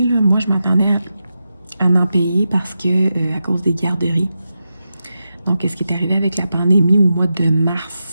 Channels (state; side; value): inverted; both; correlation -0.89